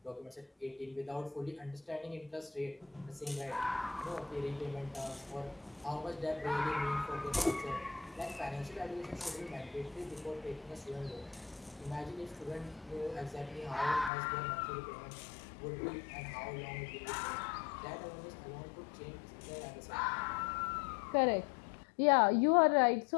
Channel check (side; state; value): right; drops out; at 14.1 s